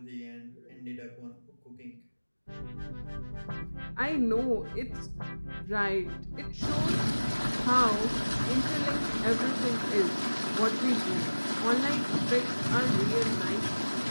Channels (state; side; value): inverted; both; correlation -1.00